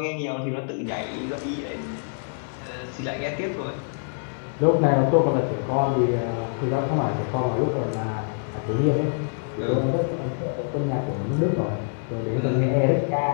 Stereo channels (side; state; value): right; silent; 62 dB below the other